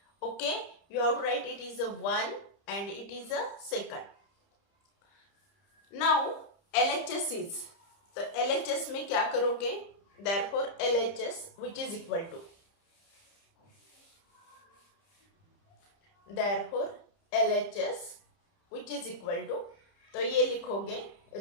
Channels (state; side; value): late; right; 30 ms